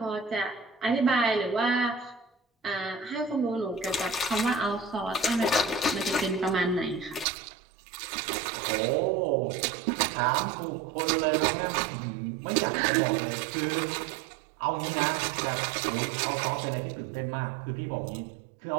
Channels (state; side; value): drops out; left; at 7.2 s